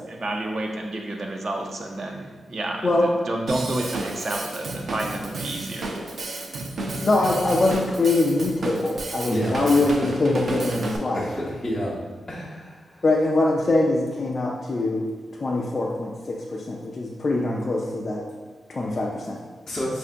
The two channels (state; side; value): normal; both; correlation 0.87